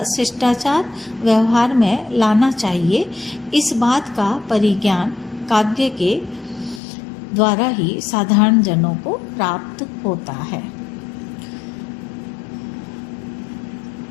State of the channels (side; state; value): right; drops out; at 6.8 s